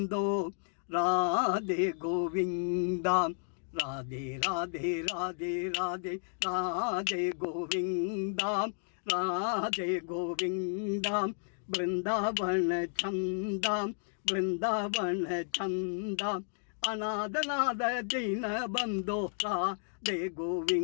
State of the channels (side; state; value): right; silent; digital silence